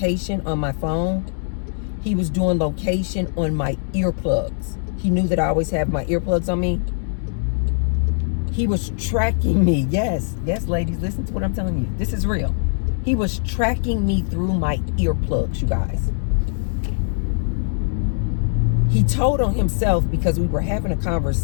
on my phone. He was doing location on my earplugs. He knew that I always have my earplugs on me. He was tracking me. Yes, ladies, listen to what I'm telling you. This is real. He was tracking me through my earplugs, you guys. He told on himself because we were having a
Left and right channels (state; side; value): silent; right; digital silence